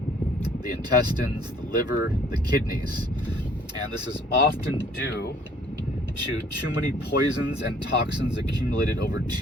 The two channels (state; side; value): normal; both; correlation 0.58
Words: the intestines, the liver, the kidneys. And this is often due to too many poisons and toxins accumulated over